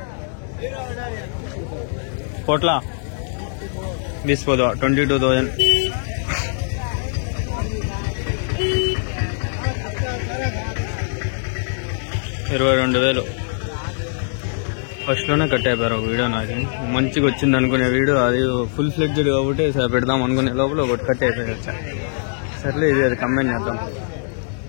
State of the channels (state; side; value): silent; right; digital silence